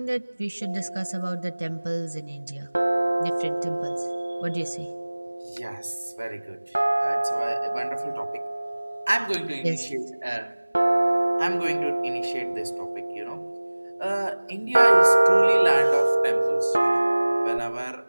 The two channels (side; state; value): both; inverted; correlation -1.00